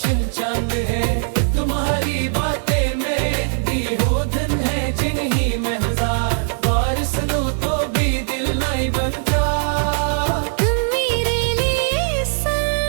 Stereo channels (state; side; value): silent; left; digital silence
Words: चांद है। तुम्हारी बातें मेरे दी हो धन है, जिन्हीं में हजार बार सुनो तो भी दिल नहीं बनता। तुम मेरे लिए